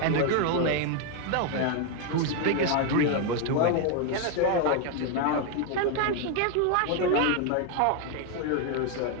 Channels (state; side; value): different; both; correlation 0.01